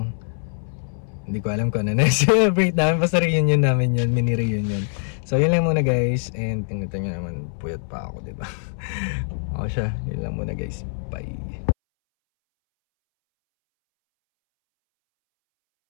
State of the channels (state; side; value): silent; right; 63 dB below the other